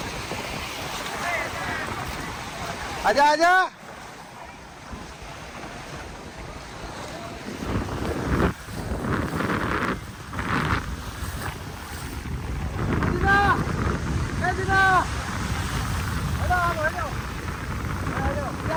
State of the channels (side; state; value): both; identical; correlation 1.00